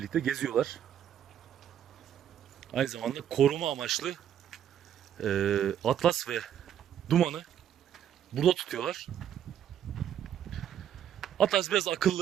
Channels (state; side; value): quieter; left; 9.9 dB